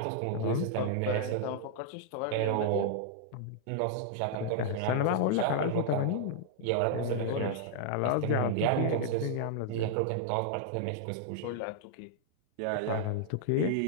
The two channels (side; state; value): both; different; correlation -0.01